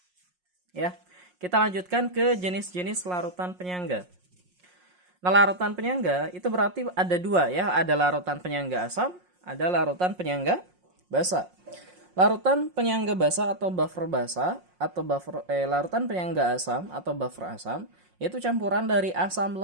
ya. Kita lanjutkan ke jenis-jenis larutan penyangga. Nah, larutan penyangga itu berarti ada dua ya. Ada larutan penyangga asam, ada larutan penyangga basa. Larutan penyangga basa atau buffer basa atau larutan penyangga asam atau buffer asam yaitu campuran dari asam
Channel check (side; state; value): left; late; 5.5 ms